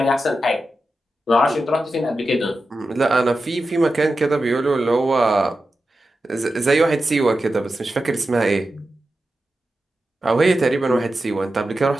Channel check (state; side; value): normal; both; correlation 0.91